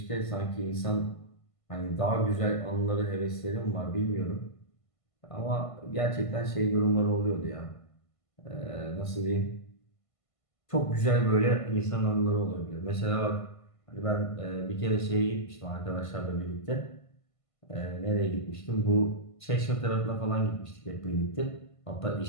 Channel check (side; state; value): right; late; 1.5 ms